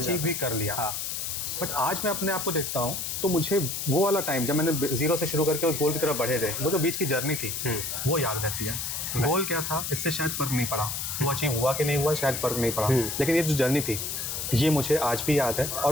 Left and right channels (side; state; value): left; noise; hiss, 3 dB below the sound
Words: भी कर लिया। बट आज मैं अपने आप को देखता हूँ तो मुझे वो वाला टाइम जब मैंने जीरो से शुरू करके उस गोल की तरफ बढ़े थे, वो जो बीच की जर्नी थी वो याद रहती है। गोल क्या था इससे शायद फ़र्क नहीं पड़ा, वो अचीव हुआ कि नहीं हुआ शायद फ़र्क नहीं पड़ा, लेकिन ये जो जर्नी थी ये मुझे आज भी याद है।